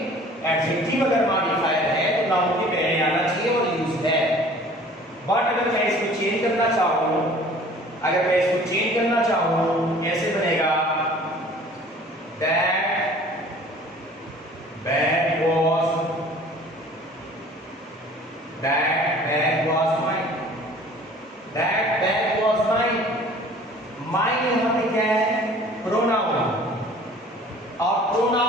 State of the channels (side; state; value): both; normal; correlation 0.49